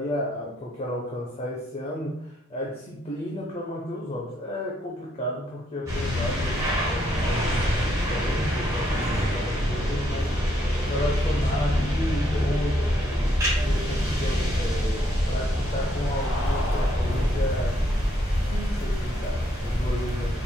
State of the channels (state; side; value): normal; both; correlation 0.74